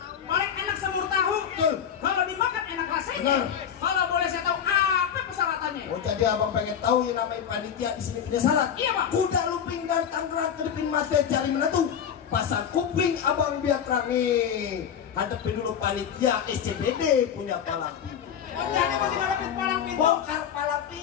paling enak semur tahu. Kalau dimakan enak rasanya. Benar. Kalau boleh saya tahu apa persyaratannya? Oh jadi abang pengen tahu yang namanya panitia di sini punya syarat. Iya bang. Kuda lumping dari Tangerang kedipin mate cari menentu. Pasang kuping abang biar terangi. Hadapi dulu panitia SCBD punya palang pintu. Oh jadi masih ngadepin palang pintu. Bongkar palang pintu.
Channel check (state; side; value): quieter; right; 8.4 dB